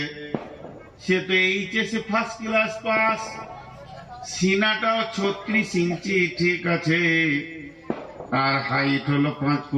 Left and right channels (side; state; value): both; identical; correlation 1.00